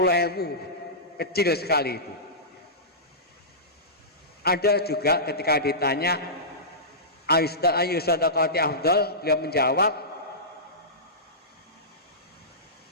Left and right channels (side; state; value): both; normal; correlation -0.18